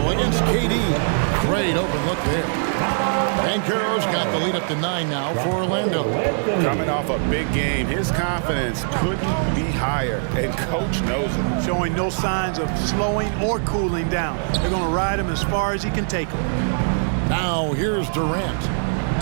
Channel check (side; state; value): left; silent; digital silence